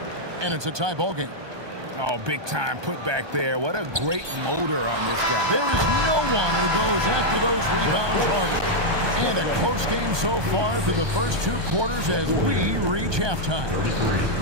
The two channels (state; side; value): late; left; 1.2 ms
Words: And it's a tie ball game. Oh, big time putback there. What a great motor on this guy. There is no one who goes after those rebounds harder. And a close game so far through the first 2 quarters as we reach halftime.